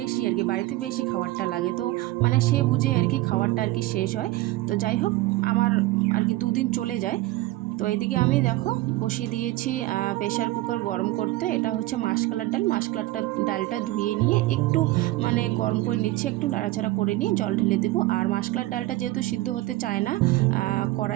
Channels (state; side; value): quieter; left; 17.9 dB